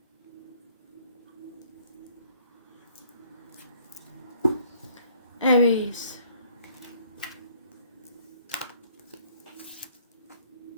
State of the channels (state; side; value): inverted; both; correlation -0.61